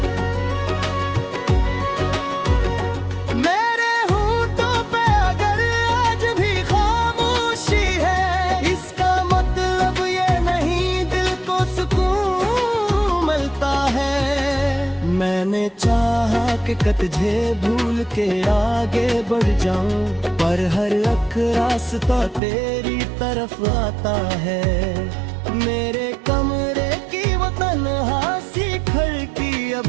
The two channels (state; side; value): drops out; left; at 22.4 s